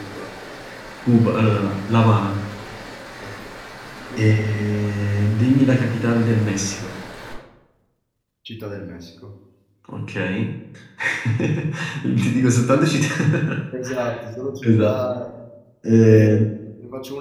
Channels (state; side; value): identical; both; correlation 1.00